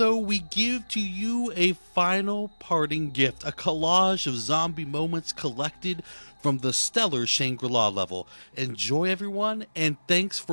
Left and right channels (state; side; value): inverted; both; correlation -1.00